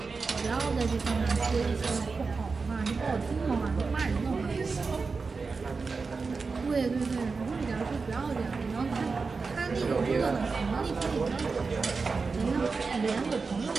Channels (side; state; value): left; quieter; 4.5 dB